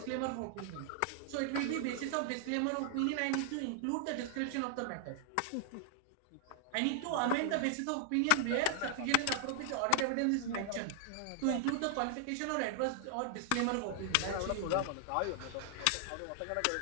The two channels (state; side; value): different; both; correlation 0.00